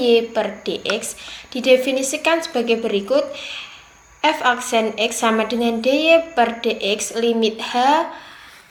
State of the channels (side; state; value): both; identical; correlation 1.00